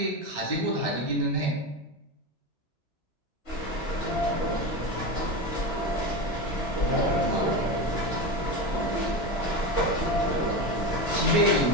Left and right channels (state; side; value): late; right; 3.0 ms